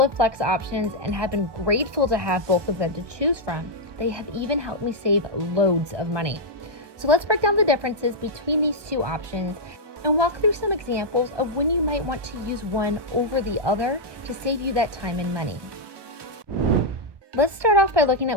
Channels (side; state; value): left; late; 1.2 ms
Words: Flex options and have been grateful to have both of them to choose from. They have even helped me save loads of money. So let's break down the differences between these two options and walk through some examples of when you might want to use one over the other to save you that time and money. Let's start off by looking